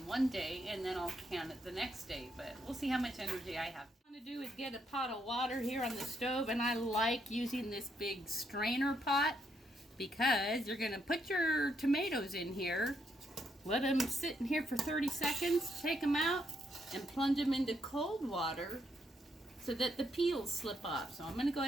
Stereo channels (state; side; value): normal; both; correlation 0.76